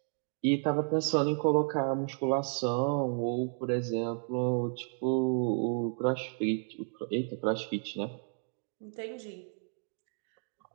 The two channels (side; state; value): left; silent; 56 dB below the other